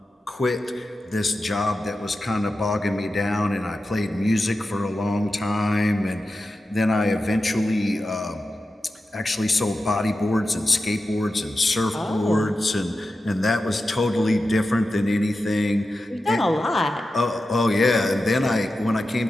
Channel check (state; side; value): normal; both; correlation 0.92